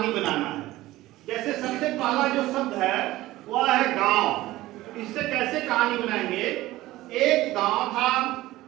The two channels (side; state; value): left; quieter; 17.0 dB